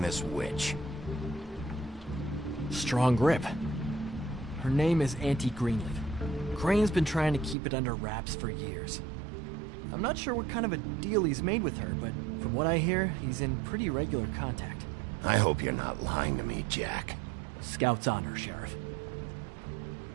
this witch. Strong grip. Her name is Auntie Greenleaf. Crane's been trying to keep it under wraps for years. I'm not sure what kind of a deal he's made with her, but from what I hear, he's in pretty regular contact. I hope you're not lying to me, Jack. Scout's honor, Sheriff.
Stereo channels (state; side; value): drops out; left; at 7.6 s